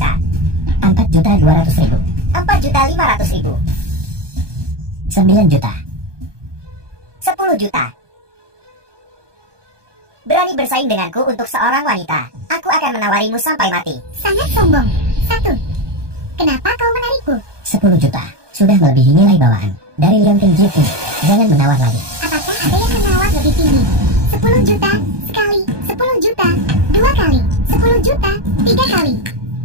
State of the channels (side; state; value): left; late; 1.2 ms